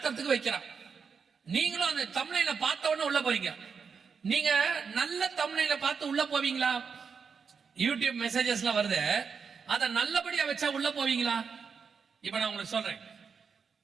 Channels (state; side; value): quieter; left; 5.9 dB